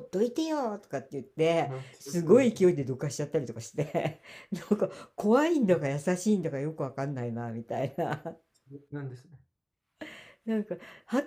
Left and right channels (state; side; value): identical; both; correlation 1.00